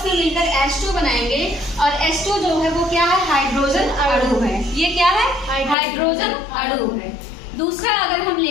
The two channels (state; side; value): drops out; right; at 5.8 s